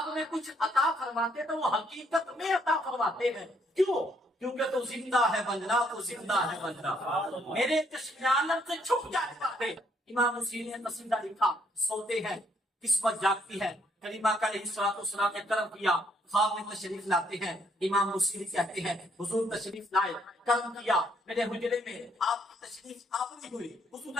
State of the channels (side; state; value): both; normal; correlation 0.69